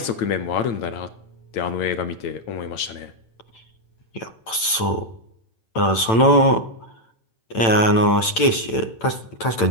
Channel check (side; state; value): right; late; 9.0 ms